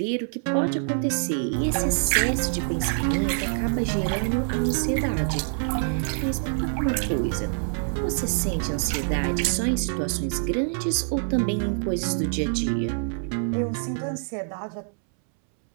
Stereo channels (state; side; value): silent; left; 61 dB below the other